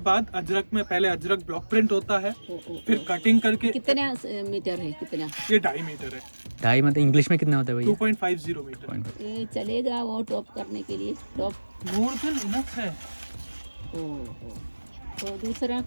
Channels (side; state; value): both; inverted; correlation -1.00